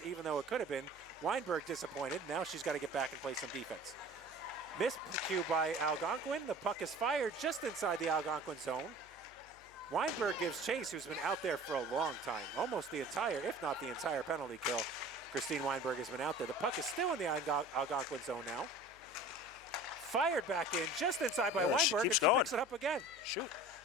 even though it could have been. Weinberg disappointed. Now she's got to get back and play some defense. Miscue by Algonquin. The puck is fired just inside the Algonquin zone. Weinberg gives chase, who's been out there for a long time. Almost the entire, if not the entire penalty kill. Christine Weinberg has been out there. The puck is still in the Algonquin zone now. Fired back in just inside by Weinberg, and she picks it up again. Shoot.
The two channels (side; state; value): left; noise; hum, 26 dB below the sound